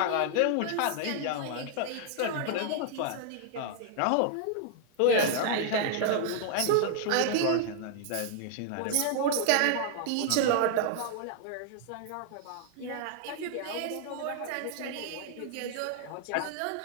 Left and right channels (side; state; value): both; different; correlation -0.01